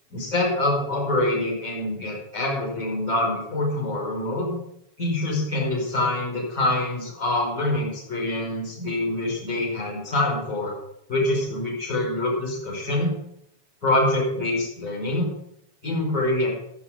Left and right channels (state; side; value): late; left; 7.2 ms